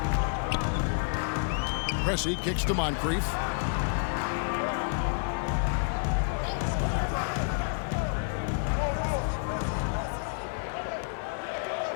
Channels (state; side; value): silent; right; digital silence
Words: Pressey kicks to Moncrief.